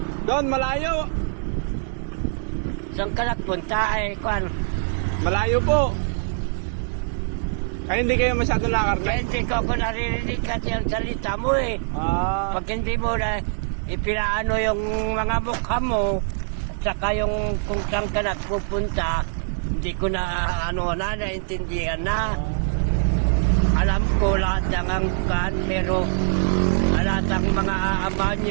Doon, malayo! Saan ka nagpunta ay kwan? Malayo po! Ay, hindi kayo masyado Kaya nakarne? hindi ko naririnig kasi ang salita mo eh. Ah, Pag hindi mo na ipinaano yung mga mukha mo, at saka yung kung saan ka nagpupunta, hindi ko na naintindihan na. Alam ko lahat ng angkan, pero lahat ng mga ama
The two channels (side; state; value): left; silent; digital silence